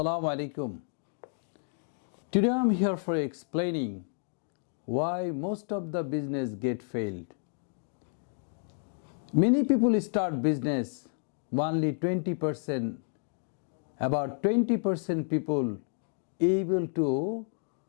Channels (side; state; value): right; silent; 57 dB below the other